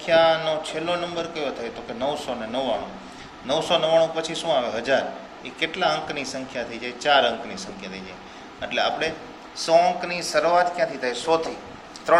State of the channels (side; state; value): both; identical; correlation 1.00